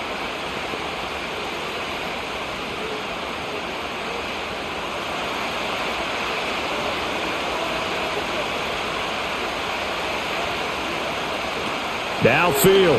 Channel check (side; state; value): both; identical; correlation 1.00